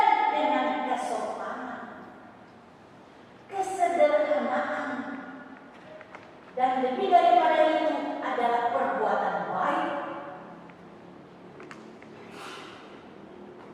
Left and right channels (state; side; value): identical; both; correlation 1.00